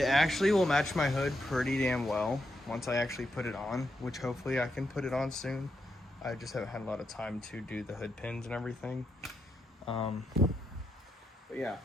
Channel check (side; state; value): both; normal; correlation 0.82